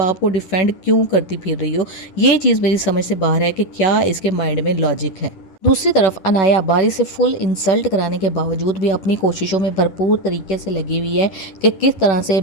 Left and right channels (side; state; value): right; late; 10 ms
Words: को डिफेंड क्यों करती फिर रही हो? ये चीज़ मेरी समझ से बाहर है कि क्या इसके माइंड में लॉजिक है। दूसरी तरफ अनाया बारी से फुल इंसल्ट कराने के बावजूद भी अपनी कोशिशों में भरपूर तरीके से लगी हुई है कि किस तरह से